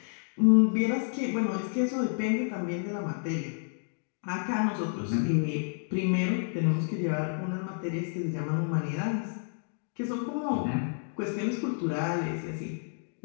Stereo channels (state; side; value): silent; right; digital silence